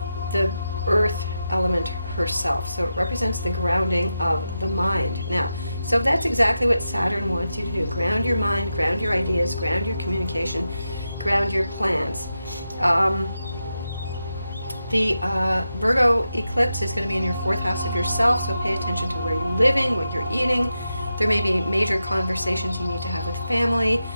the earth element herself, so it represents the grounding of the mind. Now, so that's exactly what Saturn wants you to do. Ground your mind, ground your ideas, ground your communication, ground your plans. The Virgo eclipse is going to be in your 4th house of yourself, so pay attention to where you're living, what you're eating. There may be major conversations you need to have with family.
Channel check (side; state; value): both; inverted; correlation -0.88